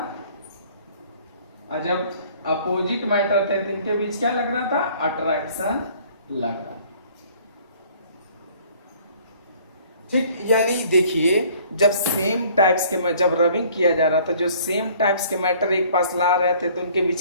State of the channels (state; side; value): inverted; both; correlation -0.56